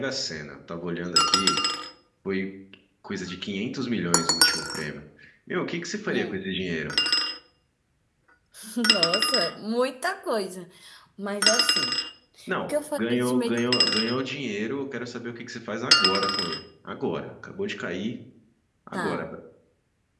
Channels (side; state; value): both; identical; correlation 1.00